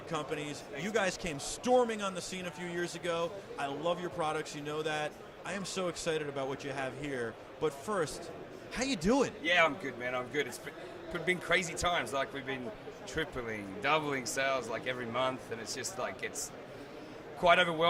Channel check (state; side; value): identical; both; correlation 1.00